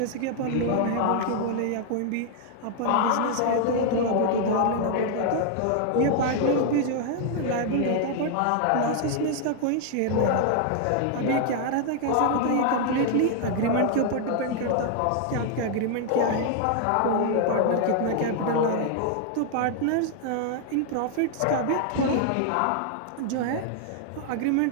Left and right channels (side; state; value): both; different; correlation 0.00